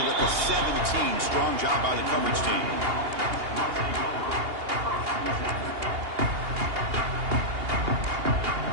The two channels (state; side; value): late; left; 2.8 ms